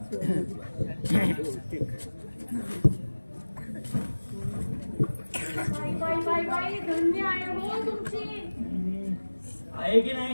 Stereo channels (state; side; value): inverted; both; correlation -1.00